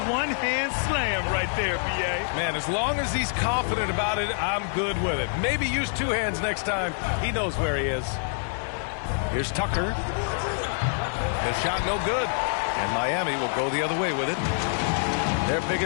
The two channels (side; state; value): right; silent; digital silence